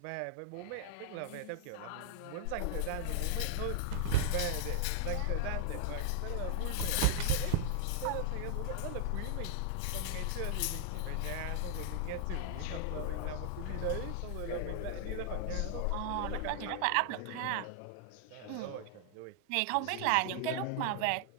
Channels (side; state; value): both; different; correlation -0.01